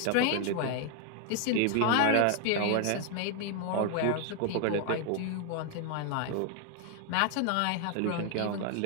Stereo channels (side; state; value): both; different; correlation 0.00